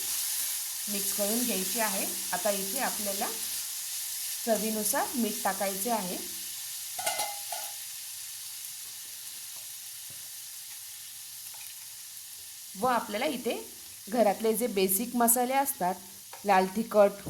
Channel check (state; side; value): identical; both; correlation 1.00